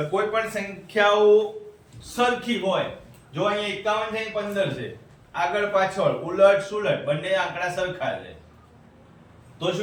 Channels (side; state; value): both; identical; correlation 1.00